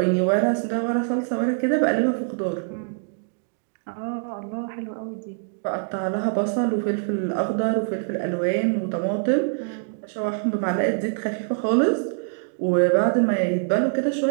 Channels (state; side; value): silent; left; digital silence